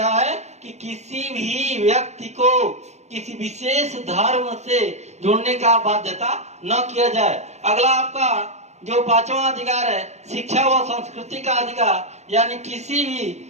है कि किसी भी व्यक्ति को किसी विशेष धर्म से जुड़ने का बाध्यता न किया जाए। अगला आपका जो 5वां अधिकार है शिक्षा व संस्कृति का अधिकार। यानी किसी भी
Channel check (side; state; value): left; late; 0.33 ms